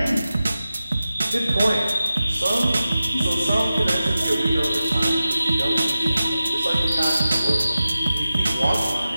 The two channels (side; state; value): both; inverted; correlation -0.94